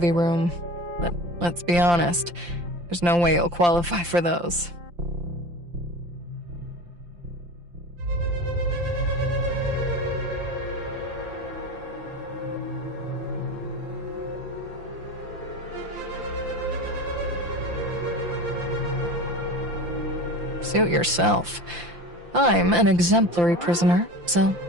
room. But let's be honest, there's no way you'll qualify for those. Suit yourself. I'm an exemplary prisoner, so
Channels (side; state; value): left; late; 5.8 ms